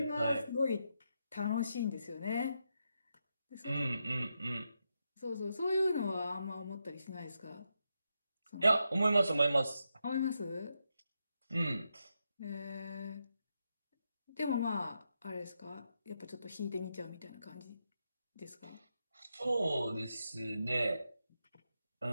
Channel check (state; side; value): inverted; both; correlation -0.85